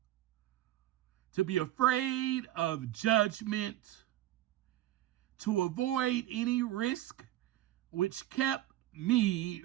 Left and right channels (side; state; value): left; quieter; 14.3 dB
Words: to be afraid of judgment, to avoid any risk, which kept me